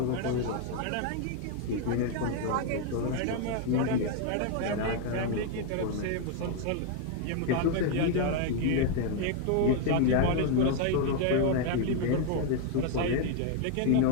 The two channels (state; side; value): different; both; correlation 0.00